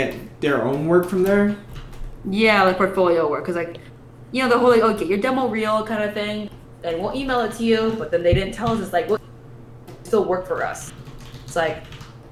their own work from there? Yeah, like portfolio work. Because, like, you know, the whole, like, oh, get your demo reel kind of thing, and we'll email it to you, but then they didn't tell us. It's like, well, you still work for us. It's like,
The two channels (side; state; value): both; identical; correlation 1.00